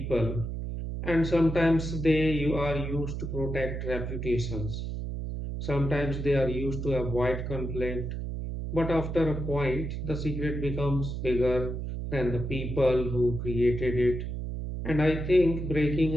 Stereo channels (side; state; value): right; noise; hum, 4 dB below the sound